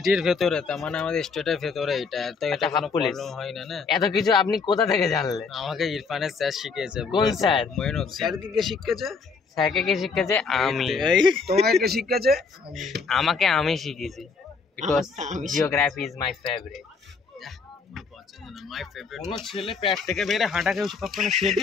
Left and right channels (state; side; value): quieter; right; 5.0 dB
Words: ভেতরে, তার মানে আমাদের স্টেটের ভেতরে এটা তো এটা হাফ কোনো পুলিশ। প্রবলেম হয় না। না এত কিছু আপনি কোথা থেকে জানলে? আমাকে ইরফানের স্যার শিখিয়েছে। কোন স্যার? মঈনুদ্দিন। স্যারকে কে শিখিয়েছে? স্যারকে কে শিখেছে? আমি। তোমাকে কে শিখিয়েছে? আমাকে আমি শিখেছি, because geography is my favourite. My favourite. কোনো ছেলে পেট থেকে বেরে হাঁটা কেউ কখনো